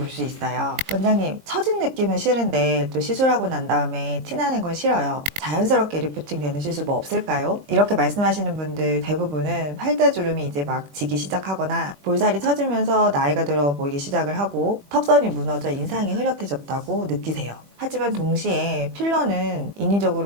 수 있어요. 원장님, 처진 느낌은 싫은데 또 시술하고 난 다음에 티나는 건 싫어요. 자연스럽게 리프팅 되는 시술 뭐 없을까요? 이렇게 말씀하시는 분들 대부분은 팔다주름이 이제 막 지기 시작하거나 볼살이 처지면서 나이가 들어 보이기 시작을 하고 턱선이 무너져 인상이 흐릿해졌다고 느끼세요. 하지만 동시에 필러는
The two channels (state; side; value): late; left; 21 ms